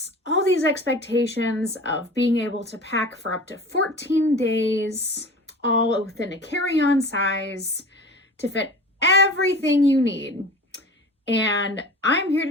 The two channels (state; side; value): normal; both; correlation 0.38